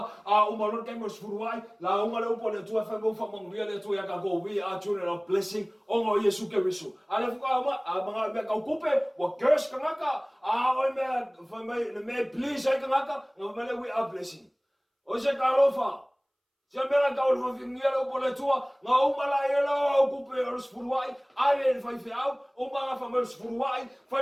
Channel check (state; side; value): identical; both; correlation 1.00